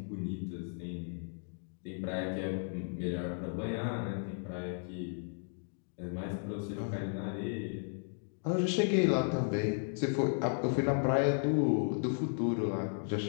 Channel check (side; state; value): right; silent; 55 dB below the other